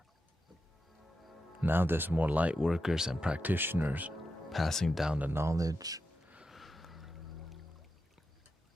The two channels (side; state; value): both; normal; correlation 0.88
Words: Now there's more light workers and practitioners passing down the knowledge.